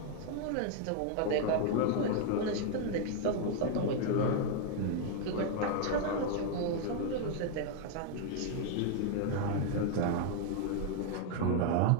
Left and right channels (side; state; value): both; different; correlation 0.00